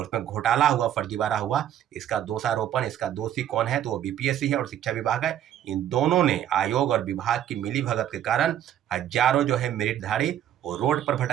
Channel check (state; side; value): quieter; left; 10.9 dB